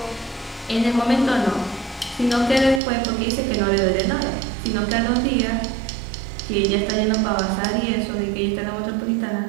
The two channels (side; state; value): left; drops out; at 2.8 s